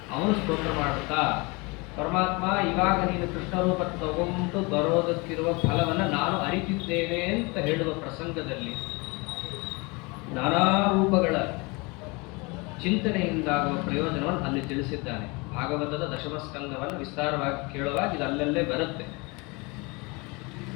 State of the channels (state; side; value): quieter; right; 27.3 dB